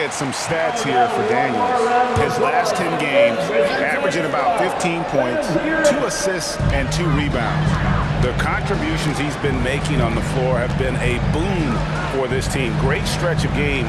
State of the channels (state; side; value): identical; both; correlation 1.00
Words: some stats here for Daniels. His last 10 games, averaging about 15 points, 2 assists, and 2 rebounds. The contributions he's been making on the floor have been a boon for this team. Great stretch of